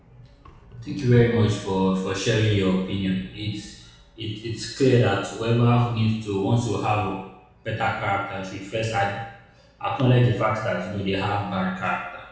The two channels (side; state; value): both; identical; correlation 1.00